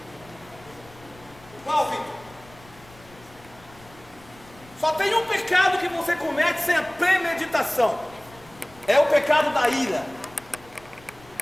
Qual, Vitor? Só tem um pecado que você comete sem a premeditação. É o pecado da ira.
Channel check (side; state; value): left; noise; rumble, 24 dB below the sound